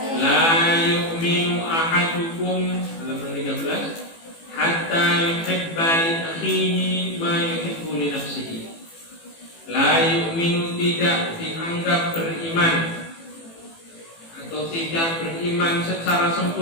la yu'minu ahadukum, halaman 13, hatta yuhibba li akhihi ma yuhibbu li nafsihi. La yu'minu, tidak dianggap beriman atau tidak beriman secara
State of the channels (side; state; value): right; late; 18 ms